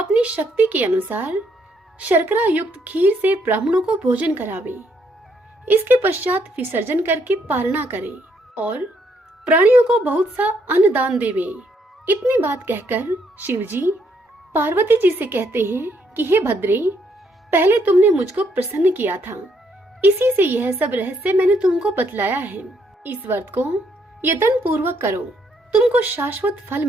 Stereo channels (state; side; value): normal; both; correlation 0.72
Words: शक्ति के अनुसार शर्करा युक्त खीर से ब्राह्मणों को भोजन करावे। इसके पश्चात विसर्जन करके पारणा करे और प्राणियों को बहुत सा अन्न दान देवे। इतनी बात कहकर शिवजी पार्वती जी से कहते हैं कि हे भद्रे, पहले तुमने मुझको प्रसन्न किया था, इसी से यह सब रहस्य मैंने तुमको बतलाया है। इस व्रत को यत्न पूर्वक करो, तुमको शाश्वत फल